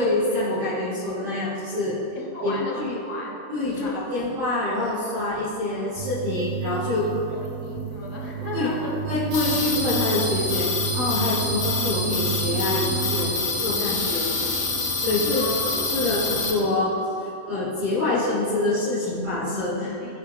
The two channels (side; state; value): left; late; 32 ms